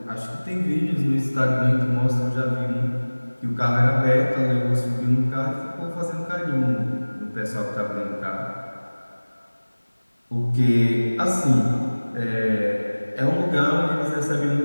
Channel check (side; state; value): both; inverted; correlation -1.00